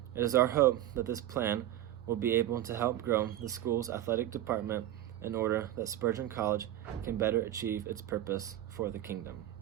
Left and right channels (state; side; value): quieter; left; 13.0 dB